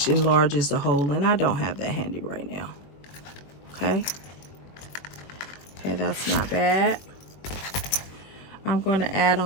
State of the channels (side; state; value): right; late; 21 ms